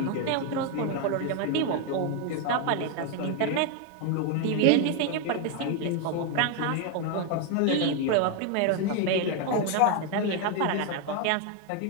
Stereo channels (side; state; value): both; different; correlation 0.01